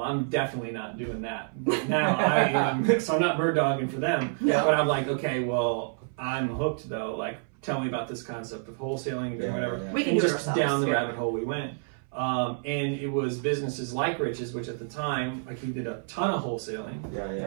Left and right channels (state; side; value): silent; left; 59 dB below the other